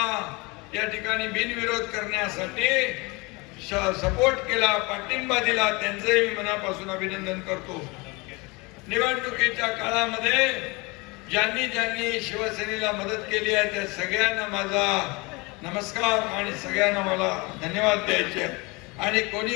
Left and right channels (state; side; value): quieter; right; 26.1 dB